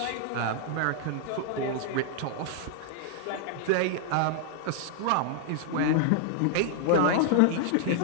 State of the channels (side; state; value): both; different; correlation -0.01